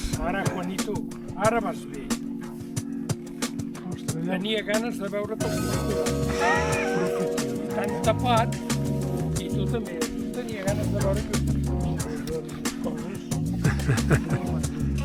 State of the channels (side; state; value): both; identical; correlation 1.00